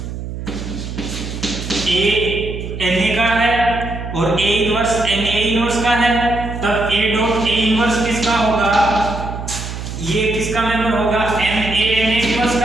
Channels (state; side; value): noise; right; hum, 8 dB below the sound